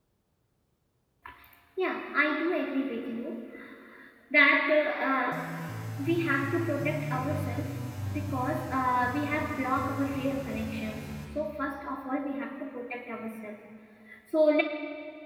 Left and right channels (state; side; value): identical; both; correlation 1.00